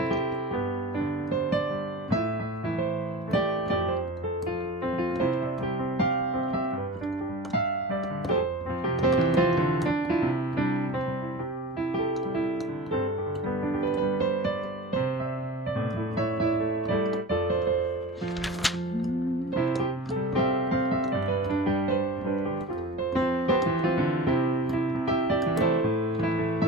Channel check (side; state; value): both; normal; correlation 0.34